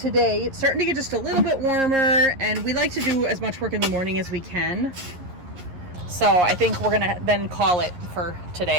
it's starting to get just a little bit warmer, and we like to do as much work in the morning as we can. So I think we're gonna then call it for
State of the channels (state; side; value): late; left; 11 ms